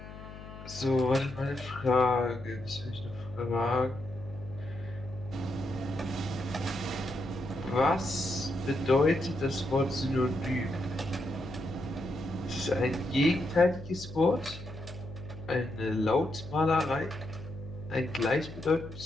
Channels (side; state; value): left; noise; hum, 14 dB below the sound